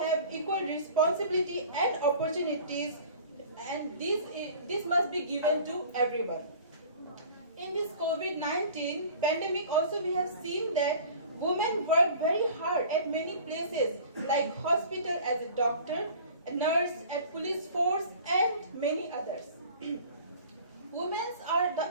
equal responsibility and opportunities, and this must be given to everyone. In this COVID-19 pandemic also we have seen that women work very hard at many places like hospital as a doctor, a nurse, at police force, and many others. Women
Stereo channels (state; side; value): inverted; both; correlation -0.45